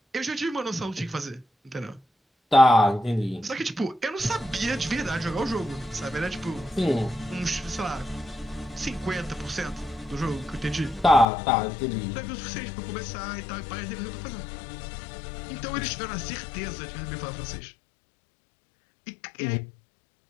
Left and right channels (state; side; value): drops out; right; at 11.2 s